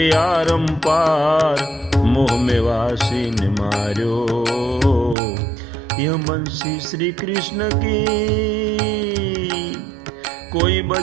आरम पार मोह में वासी ने मार्यो यह बंसी श्री कृष्ण की कोई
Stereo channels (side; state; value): left; drops out; at 5.2 s